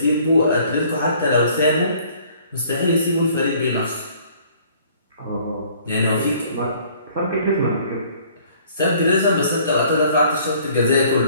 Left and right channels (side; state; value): both; inverted; correlation -0.57